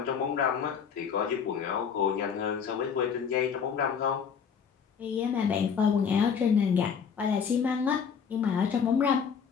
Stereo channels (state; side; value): quieter; right; 6.8 dB